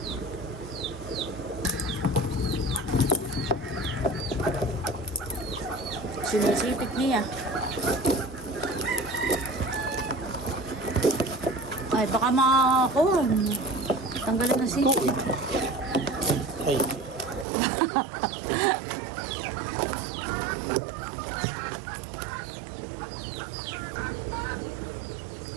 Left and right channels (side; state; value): left; drops out; at 17.4 s